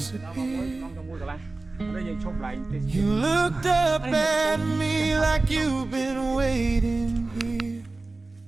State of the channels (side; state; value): left; quieter; 3.3 dB